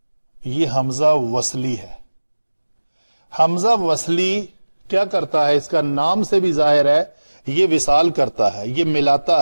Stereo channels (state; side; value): inverted; both; correlation -1.00